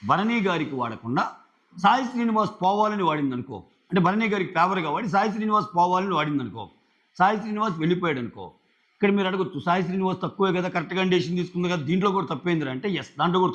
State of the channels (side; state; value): both; identical; correlation 1.00